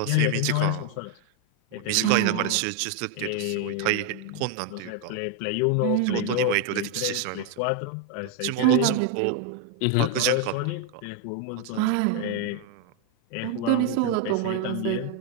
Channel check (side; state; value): both; different; correlation 0.01